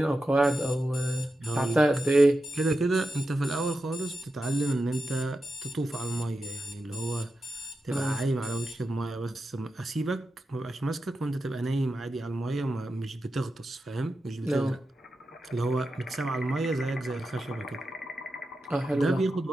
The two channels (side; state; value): both; normal; correlation 0.90